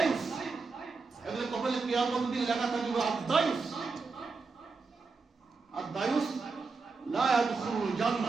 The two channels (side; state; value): left; quieter; 4.3 dB